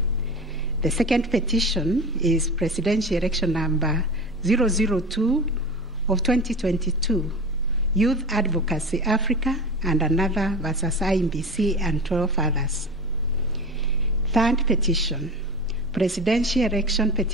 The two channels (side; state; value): both; normal; correlation 0.31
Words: The second petition is presidential election number 002 of 2022, Youth Advocacy Africa and another versus IEBC and 12 others. Third petition, presidential election